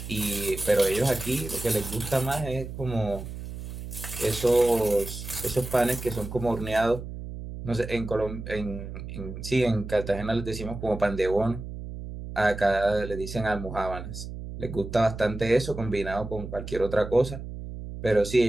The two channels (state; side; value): noise; right; hum, 9 dB below the sound